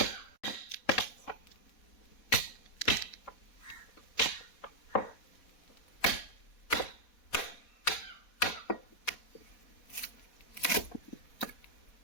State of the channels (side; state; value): right; late; 4.1 ms